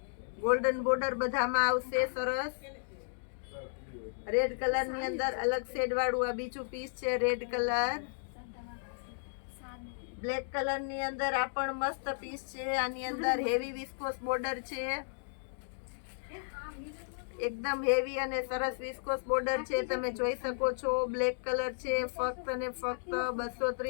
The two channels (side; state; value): right; silent; digital silence